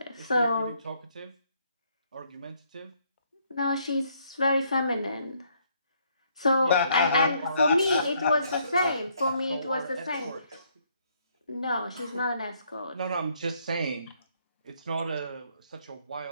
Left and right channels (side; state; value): both; inverted; correlation -0.69